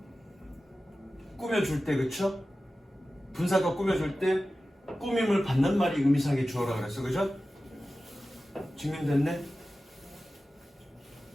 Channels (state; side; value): normal; both; correlation 0.95